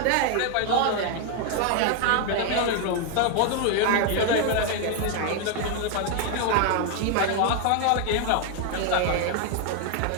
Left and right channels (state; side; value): different; both; correlation 0.00